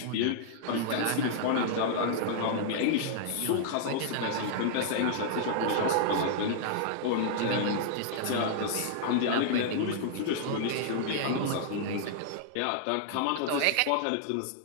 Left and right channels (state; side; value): different; both; correlation -0.01